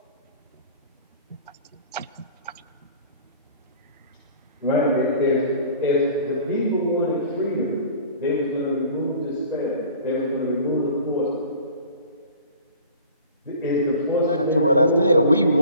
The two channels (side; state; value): both; inverted; correlation -0.45